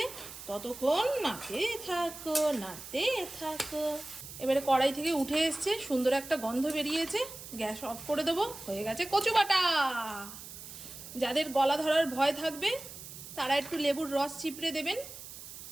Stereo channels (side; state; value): right; noise; hiss, 13 dB below the sound